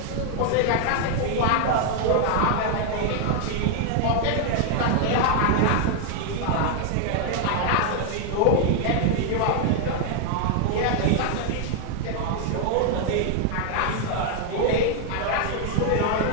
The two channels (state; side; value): different; both; correlation 0.00